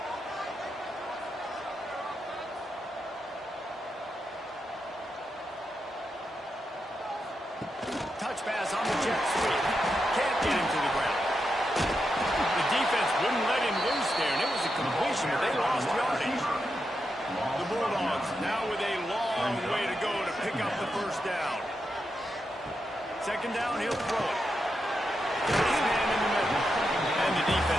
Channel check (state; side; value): normal; both; correlation 0.86